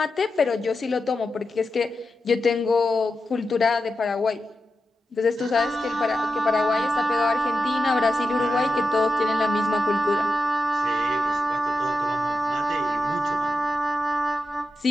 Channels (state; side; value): normal; both; correlation 0.90